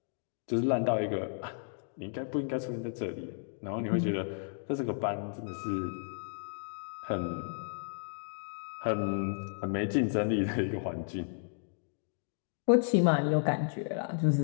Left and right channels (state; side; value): silent; right; digital silence